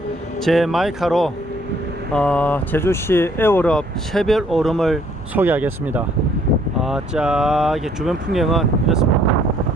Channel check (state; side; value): normal; both; correlation 0.63